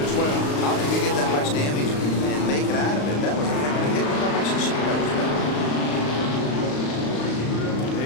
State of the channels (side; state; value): right; late; 35 ms